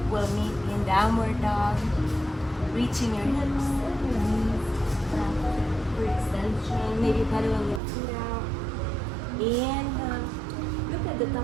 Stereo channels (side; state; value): left; drops out; at 7.8 s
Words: we'll meet in downward dog, reaching your hips and your knees for extension. Maybe pedaling your feet out. Inhale, look at the